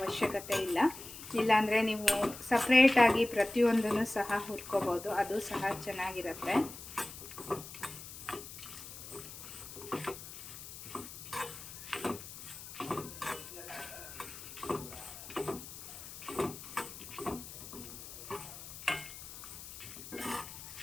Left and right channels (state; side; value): noise; left; hiss, 12 dB below the sound